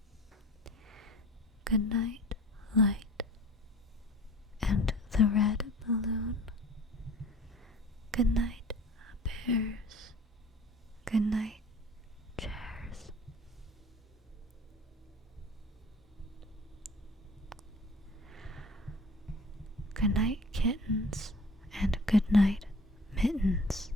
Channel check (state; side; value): normal; both; correlation 0.45